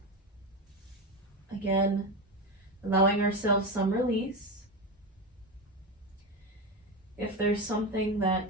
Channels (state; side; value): normal; both; correlation 0.17